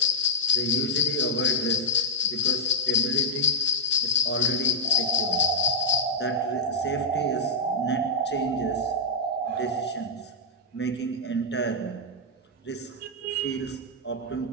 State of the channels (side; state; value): both; normal; correlation -0.08